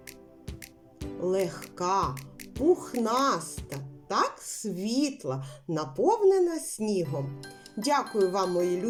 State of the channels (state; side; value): identical; both; correlation 1.00